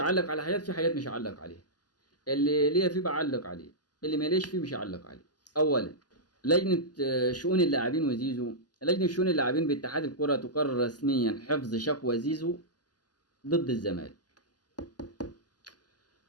على حاجات، في حاجات مش هعلق عليها. اللي ليا فيه بعلق عليه، اللي ماليش فيه مش هعلق عليه. اولا، لجنة شؤون اللاعبين وزيزو. لجنة شؤون اللاعبين باتحاد الكرة تقرر رسميا حفظ شكوى زيزو ضد الزمالك،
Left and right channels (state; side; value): late; right; 0.69 ms